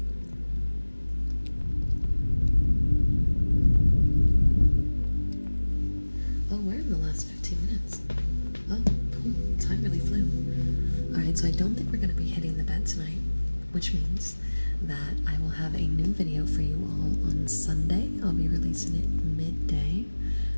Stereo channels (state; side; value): inverted; both; correlation -1.00